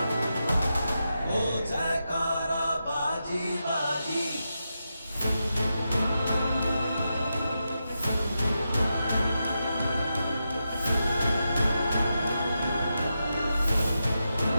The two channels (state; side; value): inverted; both; correlation -0.88